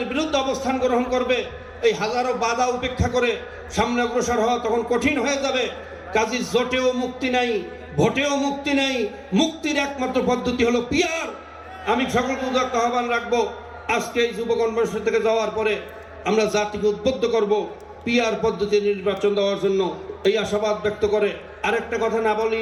বিরুদ্ধে অবস্থান গ্রহণ করবে। এই হাজারো বাধা উপেক্ষা করে সামনে অগ্রসর হওয়া তখন কঠিন হয়ে যাবে। কাজী জোটেও মুক্তি নাই, ভোটেও মুক্তি নাই। মুক্তির একমাত্র পদ্ধতি হলো পিয়ার। আমি সকলকে উদাত্ত আহ্বান রাখবো, আজকে এই যুব কনভেনশন থেকে যাওয়ার পরে আমরা জাতিকে উদ্বুদ্ধ করব পিয়ার পদ্ধতি নির্বাচন দেওয়ার জন্য, এই আশাবাদ ব্যক্ত করে আরেকটা কথা না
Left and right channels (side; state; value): both; identical; correlation 1.00